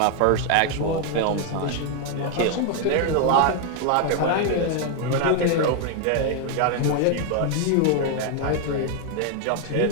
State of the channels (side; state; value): both; different; correlation 0.00